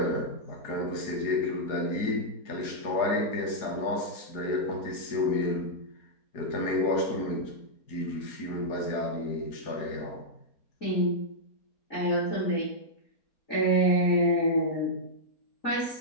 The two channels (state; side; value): late; right; 4.7 ms